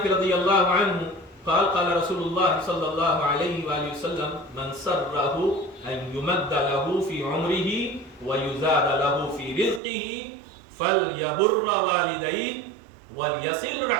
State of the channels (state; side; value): drops out; left; at 9.8 s